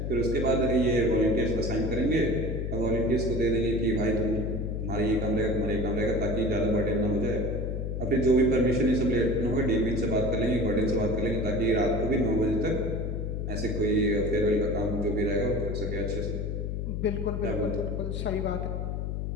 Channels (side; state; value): left; noise; hum, 2 dB below the sound